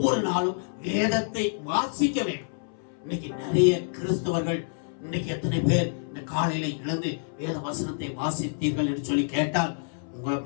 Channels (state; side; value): silent; right; 58 dB below the other